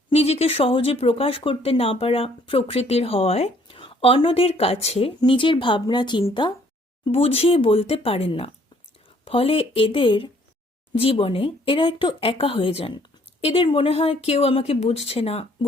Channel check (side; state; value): both; normal; correlation 0.62